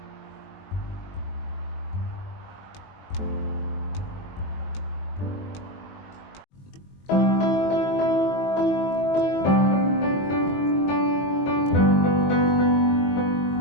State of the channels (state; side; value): late; right; 22 ms